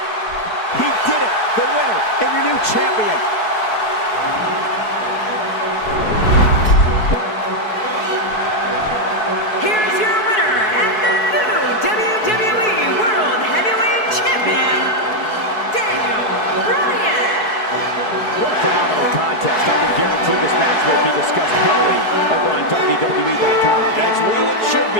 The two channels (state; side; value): late; right; 4.7 ms